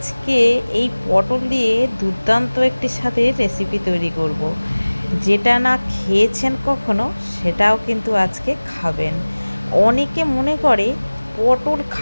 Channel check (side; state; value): both; inverted; correlation -1.00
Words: এই পটল দিয়ে দুর্দান্ত একটি স্বাদের রেসিপি তৈরি করব। যেটা না খেয়েছেন কখনো সেটাও কিন্তু আজকে খাবেন। অনেকে মনে করে পটল